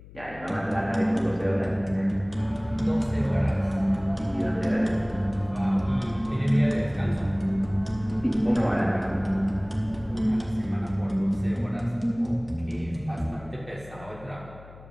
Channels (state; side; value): noise; left; hum, 19 dB below the sound